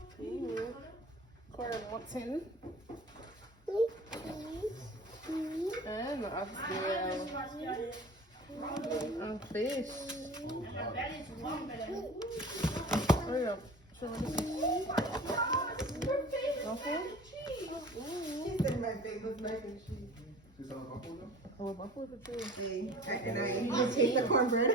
Corn mutton. And and fish. Hurry up. Show me this. Okay. My favorite mac and cheese. Oh, buffalo too. See, and I even taste the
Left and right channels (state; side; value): normal; both; correlation 0.41